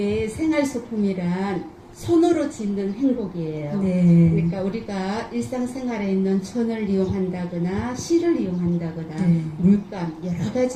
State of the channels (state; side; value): identical; both; correlation 1.00